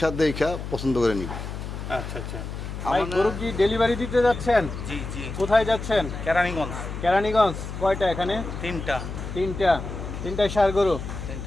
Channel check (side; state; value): left; noise; hum, 7 dB below the sound